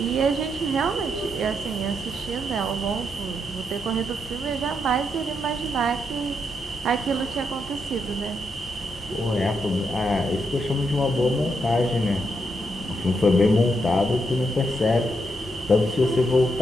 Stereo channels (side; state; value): both; normal; correlation 0.80